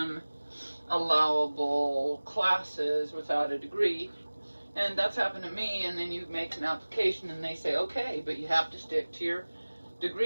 allowable classes without a degree. And that's happened to me. And then you make an application and they say, okay, but you have to stick to your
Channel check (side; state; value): both; inverted; correlation -1.00